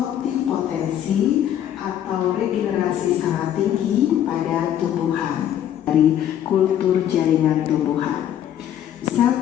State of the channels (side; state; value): right; quieter; 10.7 dB